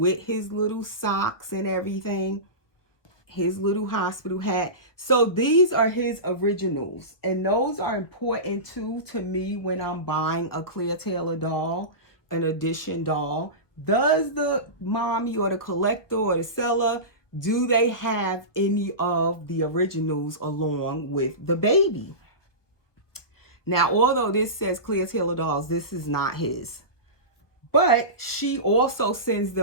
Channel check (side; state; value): right; late; 1.4 ms